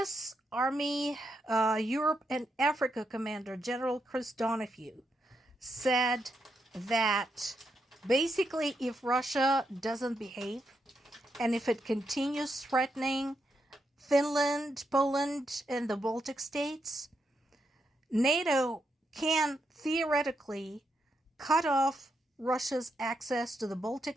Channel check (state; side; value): normal; both; correlation 0.82